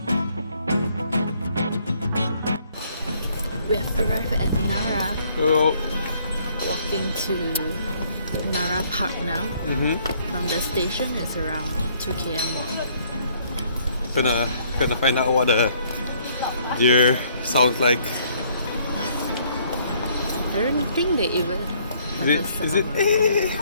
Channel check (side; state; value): both; inverted; correlation -0.64